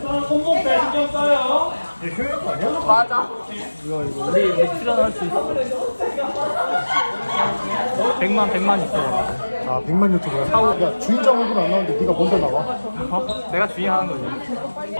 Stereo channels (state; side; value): inverted; both; correlation -1.00